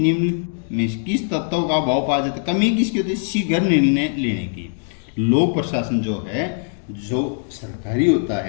में किस तत्व का अभाव पाया जाता है? कमी किसकी होती है? शीघ्र निर्णय लेने की। लोक प्रशासन जो है, जो सरकारी होता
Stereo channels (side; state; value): right; silent; digital silence